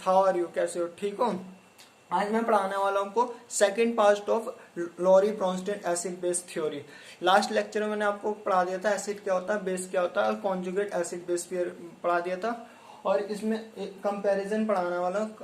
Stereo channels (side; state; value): both; identical; correlation 1.00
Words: how are you? कैसे हो? ठीक हो? आज मैं पढ़ाने वाला हूँ आपको second part of Lowry Bronsted acid base theory. Last lecture में मैंने आपको पढ़ा दिया था एसिड क्या होता है, बेस क्या होता है और कॉन्जुगेट एसिड बेस पढ़ा दिया था। और इसमें एक कंपैरिजन पढ़ाने वाला हूँ,